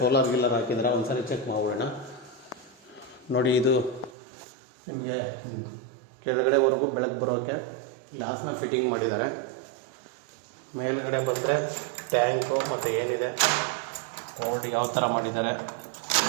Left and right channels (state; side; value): drops out; left; at 4.1 s